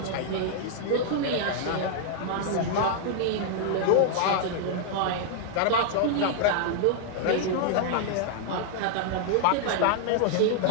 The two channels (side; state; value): both; different; correlation -0.01